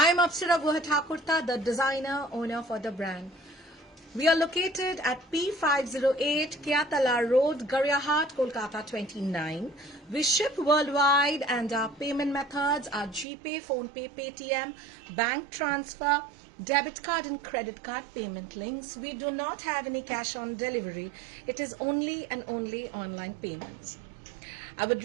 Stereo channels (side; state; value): left; drops out; at 13.2 s